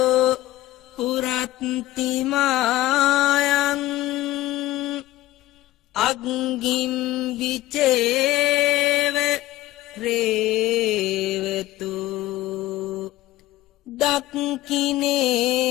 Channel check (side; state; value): right; quieter; 16.2 dB